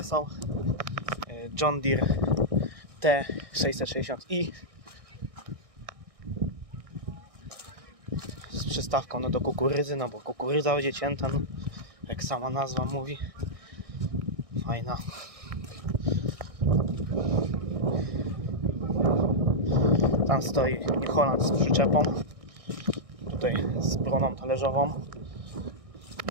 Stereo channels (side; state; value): left; late; 1.6 ms